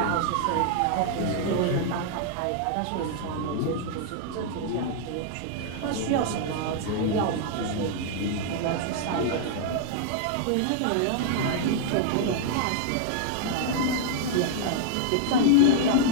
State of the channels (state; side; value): different; both; correlation -0.01